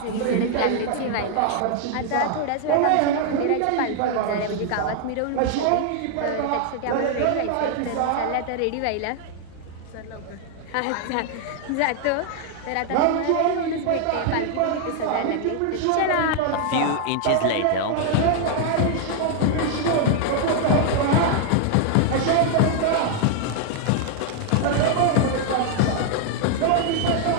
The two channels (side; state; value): both; different; correlation 0.00